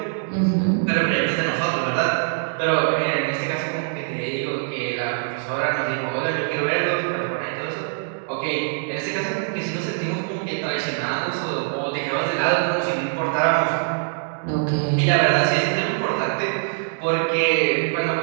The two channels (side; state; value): left; silent; digital silence